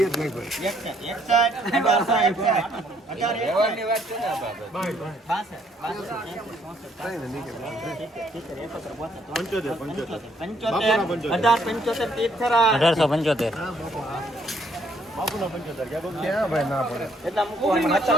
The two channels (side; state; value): both; normal; correlation 0.67